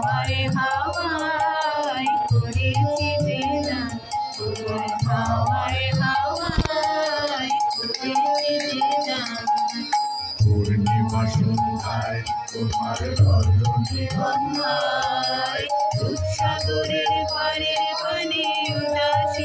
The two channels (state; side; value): identical; both; correlation 1.00